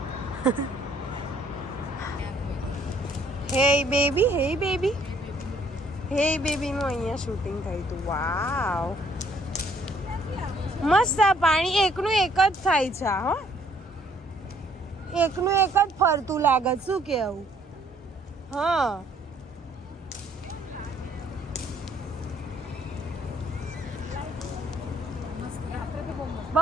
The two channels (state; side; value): normal; both; correlation 0.63